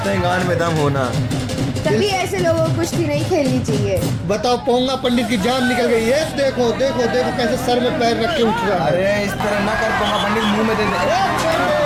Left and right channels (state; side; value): identical; both; correlation 1.00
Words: हैं गान में दम होना। तभी ऐसे लोगों को कुश्ती नहीं खेलनी चाहिए। बताओ, पोंगा पंडित की जान निकल गई। ये देखो देखो देखो कैसे सर में पैर रख के उठ रहा है। अरे इस तरह ना कर, पोंगा पंडित मुंह में दे दे। क्या